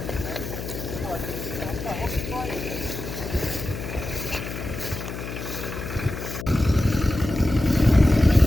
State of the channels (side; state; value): left; noise; hum, 8 dB below the sound